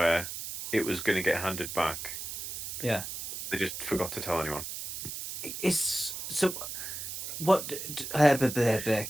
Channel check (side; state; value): right; noise; hiss, 7 dB below the sound